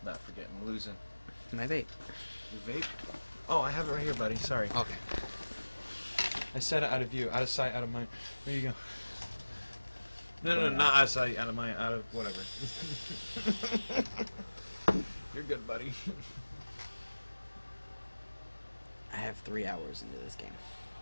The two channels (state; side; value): inverted; both; correlation -1.00